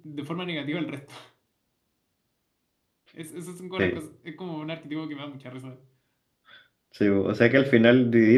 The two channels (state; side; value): identical; both; correlation 1.00